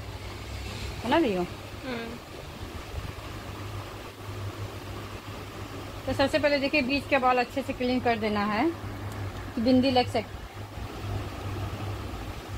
रही हूँ। तो सबसे पहले देखिए बीच के बाल अच्छे से क्लीन कर देना है, बिंदी लग सकती।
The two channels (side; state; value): both; identical; correlation 1.00